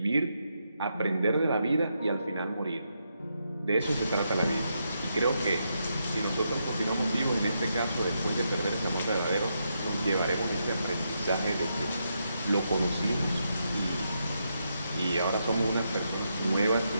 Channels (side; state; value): both; inverted; correlation -0.81